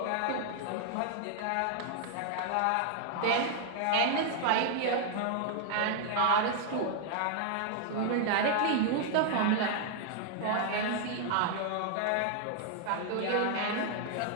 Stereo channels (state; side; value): different; both; correlation 0.00